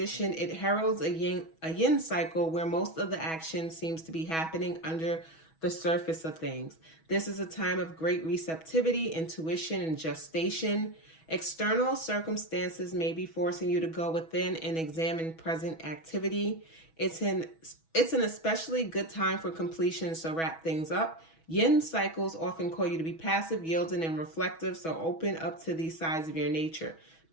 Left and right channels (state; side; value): late; right; 6.2 ms